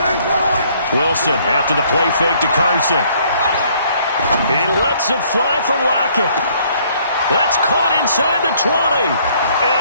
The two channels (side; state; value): both; inverted; correlation -0.63